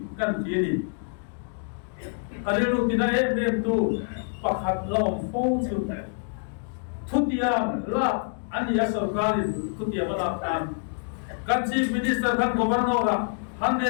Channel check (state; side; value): silent; right; 61 dB below the other